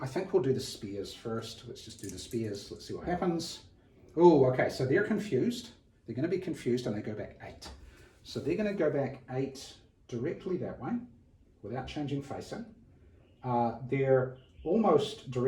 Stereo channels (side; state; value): both; identical; correlation 1.00